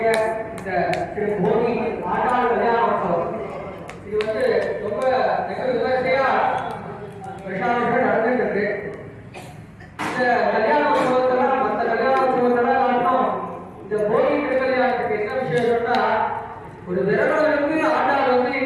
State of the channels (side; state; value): both; identical; correlation 1.00